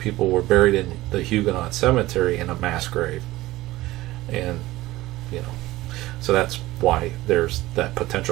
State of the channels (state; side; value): quieter; left; 17.7 dB